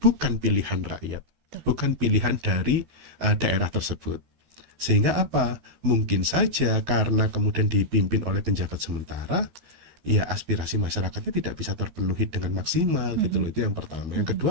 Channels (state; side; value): late; left; 13 ms